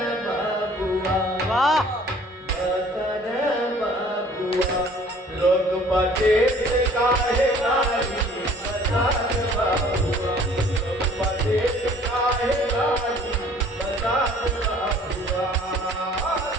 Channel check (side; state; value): both; normal; correlation 0.53